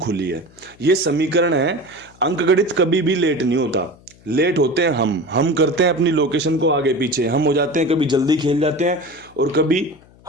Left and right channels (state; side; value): noise; left; hum, 27 dB below the sound